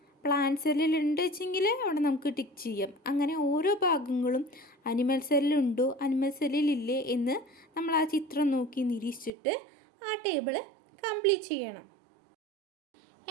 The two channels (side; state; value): left; drops out; at 9.3 s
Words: പ്ലാന്റ് സെല്ലിലുണ്ട് വെച്ചെങ്കിൽ അവിടെ നമുക്ക് ടിക്ക് ചെയ്യാം. അങ്ങനെ ഓരോ ഭാഗങ്ങളും അനിമൽ സെല്ലിലുണ്ടോ അനിമൽ സെല്ലിലില്ലേ എന്ന് നമ്മൾ ആ ചിത്രം നോക്കി നിരീക്ഷിച്ചിട്ട് ആ ടേബിൾ കംപ്ലീറ്റ് ചെയ്യണം.